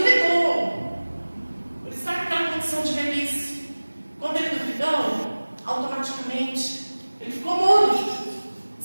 Ele estava naquela condição de velhice. Quando ele duvidou, automaticamente ele ficou mudo.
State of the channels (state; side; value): inverted; both; correlation -1.00